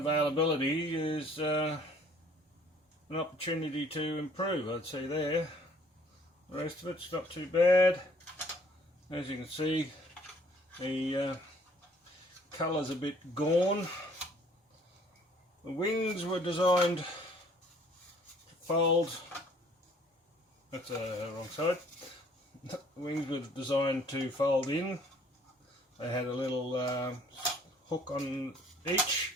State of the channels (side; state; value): both; normal; correlation 0.58